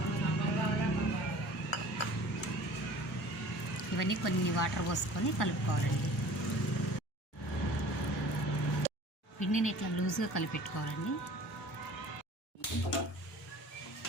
ఇవన్నీ కొన్ని వాటర్ పోసుకొని కలుపుకోవాలండి. పిండిని ఇట్లా లూజ్గా కలిపెట్టుకోవాలండి.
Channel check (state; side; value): normal; both; correlation 0.45